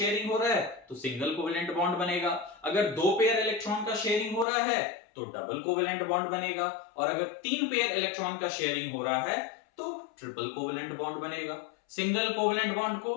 हो रहा है तो सिंगल कोवेलेंट बॉन्ड बनेगा, अगर 2 पेयर इलेक्ट्रॉन का शेयरिंग हो रहा है तो डबल कोवेलेंट बॉन्ड बनेगा, और अगर 3 पेयर इलेक्ट्रॉन का शेयरिंग हो रहा है तो ट्रिपल कोवेलेंट बॉन्ड बनेगा। सिंगल कोवेलेंट बॉन्ड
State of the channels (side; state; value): right; drops out; at 4.5 s